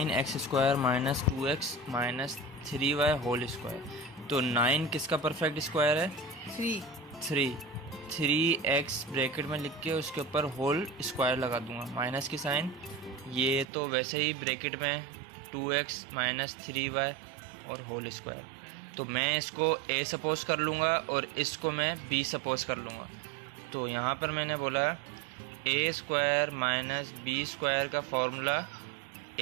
square minus 2x minus 3y whole square. तो 9 किसका परफेक्ट स्क्वायर है, 3x ब्रैकेट में लिख के उसके ऊपर होल स्क्वायर लगा दूंगा, माइनस की साइन। ये तो वैसे ही ब्रैकेट में 2x माइनस 3y और होल स्क्वायर। तो मैं इसको a सपोज कर लूँगा और इसको मैं b सपोज कर लूँगा। तो यहाँ पर मैंने बोला a square minus B square का formula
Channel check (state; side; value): drops out; left; at 13.7 s